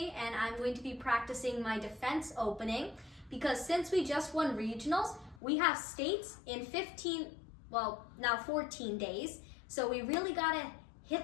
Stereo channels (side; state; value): right; drops out; at 5.4 s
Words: and I'm going to be practicing my defense opening because since we just won regionals, we have states in 14 days. So we really gotta